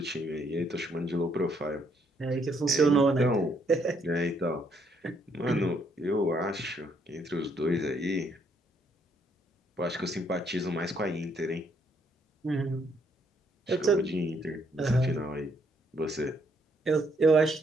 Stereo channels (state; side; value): normal; both; correlation 0.71